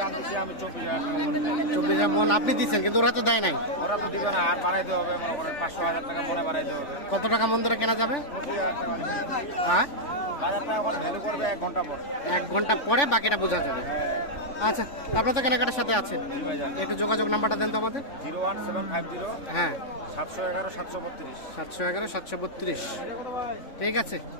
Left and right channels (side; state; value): right; late; 3.5 ms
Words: দাম দিচ্ছি আমি 24,000 টাকা মনে করি। 24,000 মন আপনি দিচ্ছেন, কিন্তু ওরা তো দেয় নাই। ওরা তো দিবে না, আর বাড়াইতে হবে, মনে করেন 500,000 টাকা মনে বাড়াইতে হবে। কত টাকা মন ধরে কেনা যাবে? 25,000 টাকা দিচ্ছি। হ্যাঁ, বাজারটা এখন ভ্যালু করবে 1 ঘন্টা পর। 1 ঘন্টা পরে বাকিটা বোঝা যাবে। আচ্ছা, আপনার তো কেনাকাটার সাথে আছেন, একটু যোগাযোগ নাম্বারটা দেন তো আমাদের। 01750 হ্যাঁ, 711 732। 711 732। ঠিক আছে।